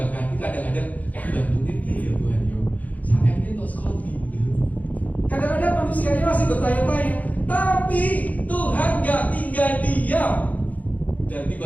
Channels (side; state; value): right; late; 0.076 ms